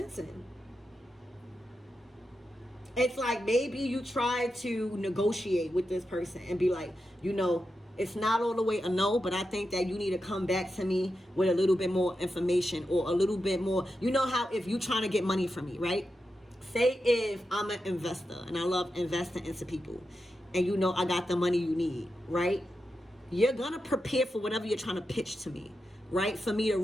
in. It's like maybe you try to negotiate with this person and be like, you know, it's not all the way a no, but I think that you need to come back to me with a little bit more information, or a little bit more. You know how if you trying to get money from me, right? Say if I'm an investor and I love investing into people, and you know I got the money you need, right? You're gonna prepare for whatever you're trying to pitch to me, right? For me to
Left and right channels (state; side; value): normal; both; correlation 0.88